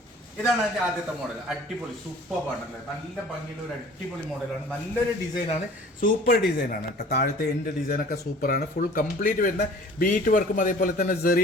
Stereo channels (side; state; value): both; normal; correlation 0.47